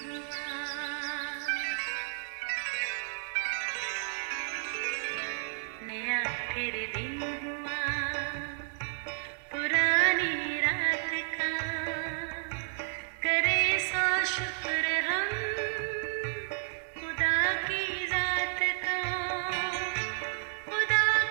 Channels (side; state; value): left; silent; 57 dB below the other